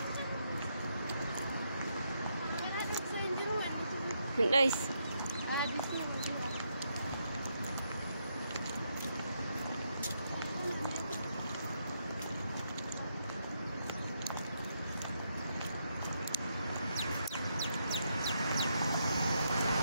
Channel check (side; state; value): both; inverted; correlation -0.79